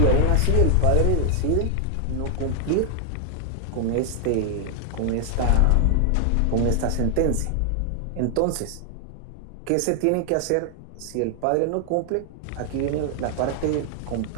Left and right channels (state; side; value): different; both; correlation 0.00